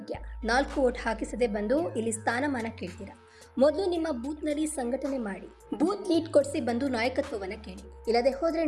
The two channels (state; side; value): identical; both; correlation 1.00